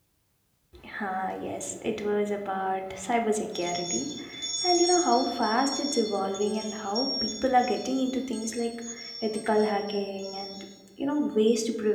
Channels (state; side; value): identical; both; correlation 1.00